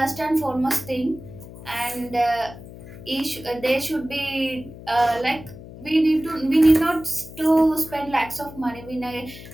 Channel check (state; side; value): noise; left; hum, 16 dB below the sound